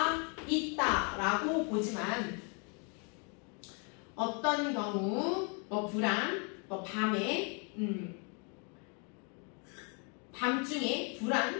있다라고 보지만 어떤 경우 불안, 밤에 밤중에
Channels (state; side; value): quieter; right; 36.7 dB